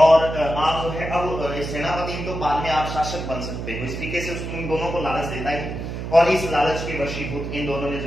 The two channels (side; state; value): right; noise; hum, 6 dB below the sound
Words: आप जो है अब सेनापति तो बाद में आप शासक बन सकते हो। इस तरीके से उन दोनों को लालच देता है और इस लालच के वशीभूत इन दोनों ने